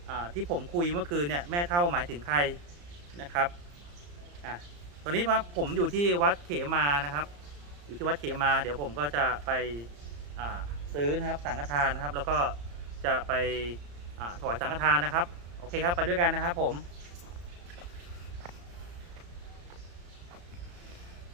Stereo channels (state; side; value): late; left; 34 ms